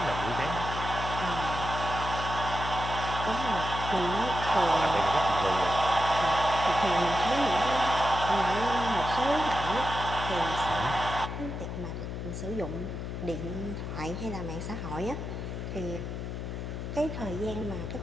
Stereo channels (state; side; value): noise; left; hum, 5 dB below the sound